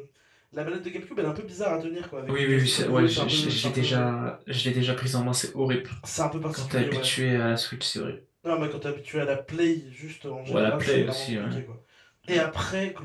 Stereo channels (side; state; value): both; identical; correlation 1.00